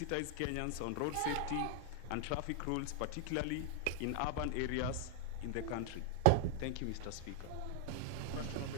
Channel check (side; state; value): both; different; correlation 0.00